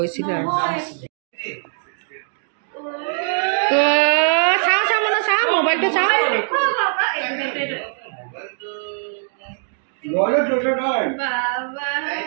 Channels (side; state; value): left; silent; digital silence